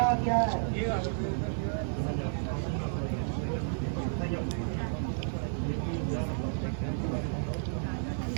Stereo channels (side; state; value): left; silent; digital silence